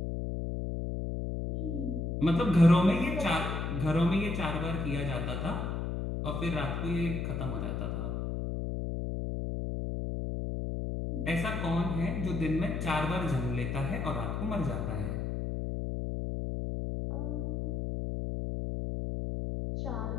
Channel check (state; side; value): noise; left; hum, 2 dB below the sound